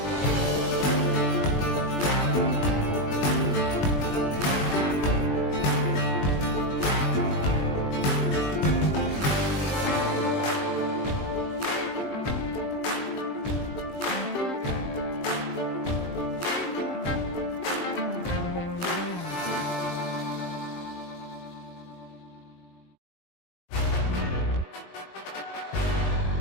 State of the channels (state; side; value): late; right; 20 ms